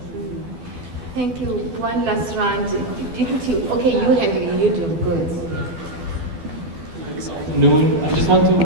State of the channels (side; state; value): left; late; 12 ms